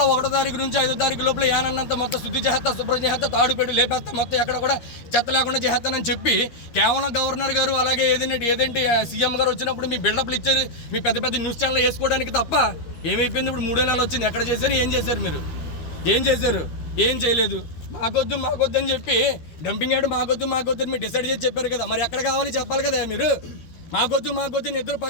1వ తారీఖు నుంచి 5వ తారీఖు లోపల యానంతా మొత్తం శుద్ధి చేస్తా, శుభ్రం చేస్తా, తాడు పెట్టి లేపేస్తా, మొత్తం ఎక్కడ కూడా చెత్త లేకుండా చేస్తానని చెప్పి కేవలం గవర్నర్ గారు అలాగే ఏదంటే సీఎం గారు వచ్చినప్పుడు మీ బిల్డప్లు ఇచ్చారు, మీ పెద్ద పెద్ద న్యూస్ ఛానల్ వేసుకోవడానికి తప్ప ఏమైపోయింది? ఇప్పుడు 3 నెలలు వచ్చింది. ఎక్కడ చేశారు? ఏం చేశారు? మీరు ఏం చేశారు? ఏం చేయలేదు. మాకొద్దు అని చెప్పి డంపింగ్ యార్డ్ మాకొద్దు అని మీరు డిసైడ్ చేసి చెప్పారు కదా. మరి ఎక్కడ కావాలి చెప్పాలి కదా మీరు. మాకొద్దు ఇద్దరు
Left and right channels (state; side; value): late; right; 13 ms